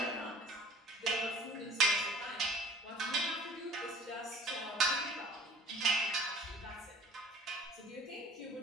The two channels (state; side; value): normal; both; correlation 0.47